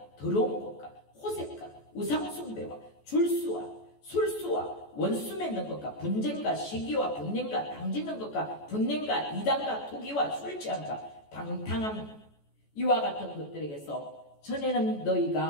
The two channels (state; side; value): late; right; 14 ms